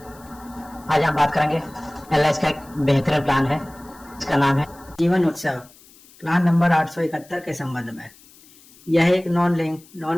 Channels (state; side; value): noise; left; hiss, 25 dB below the sound